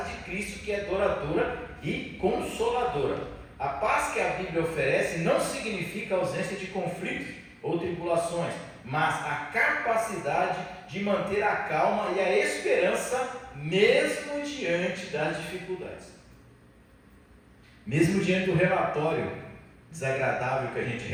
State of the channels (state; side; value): identical; both; correlation 1.00